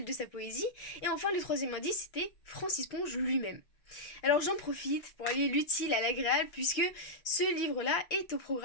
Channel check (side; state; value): right; late; 5.9 ms